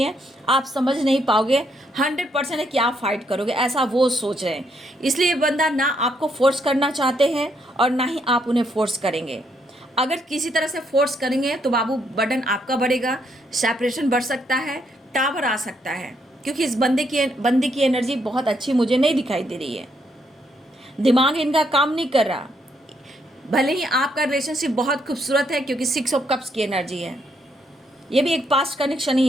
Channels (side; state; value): both; normal; correlation 0.74